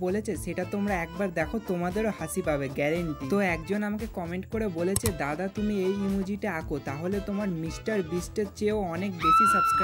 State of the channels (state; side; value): identical; both; correlation 1.00